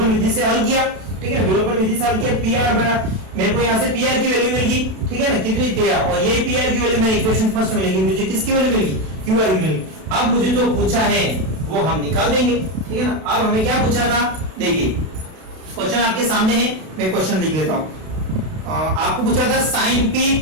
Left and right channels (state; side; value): late; left; 32 ms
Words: विधि से हल किया, ठीक है, विलोपन विधि से हल किया। PR बड़ा मेरे को यहाँ से PR की वैल्यू मिल गई, ठीक है ना, कितनी 13, और यही PR की वैल्यू मैंने इक्वेशन फर्स्ट में लिखी, मुझे किसकी वैल्यू मिल गई, QR की वैल्यू। अब मुझे जो पूछा है वो हम निकाल देंगे, ठीक है ना। अब हमें क्या पूछा था, देखिए क्वेश्चन आपके सामने है, मैं क्वेश्चन लिख देता हूं। आपको पूछा था sin p